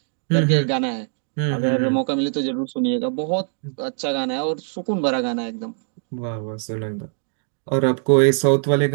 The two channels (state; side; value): silent; left; 64 dB below the other